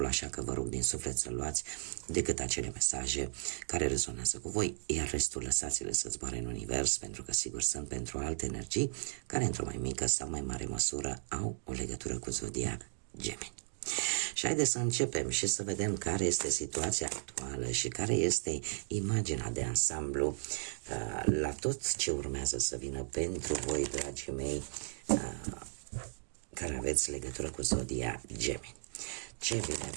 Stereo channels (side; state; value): left; silent; digital silence